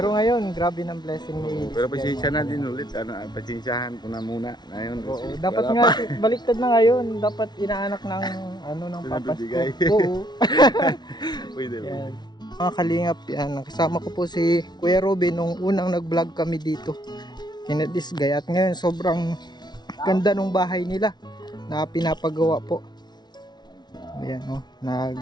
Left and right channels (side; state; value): right; late; 0.20 ms